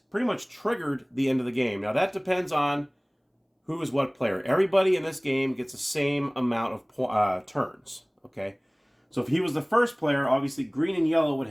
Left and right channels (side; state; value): both; identical; correlation 1.00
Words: much triggered the end of the game. Now, that depends on who is what player. Everybody in this game gets the same amount of turns. Okay. So if he was the first player, obviously green and yellow would